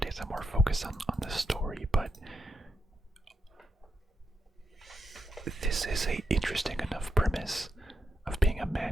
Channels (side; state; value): both; normal; correlation 0.84